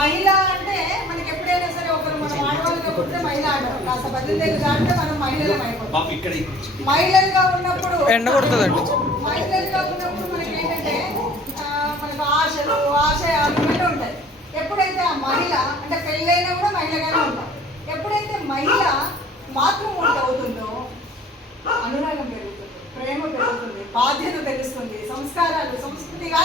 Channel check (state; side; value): normal; both; correlation 0.51